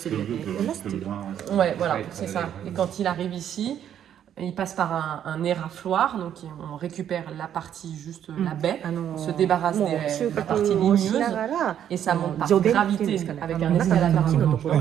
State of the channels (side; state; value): left; quieter; 9.9 dB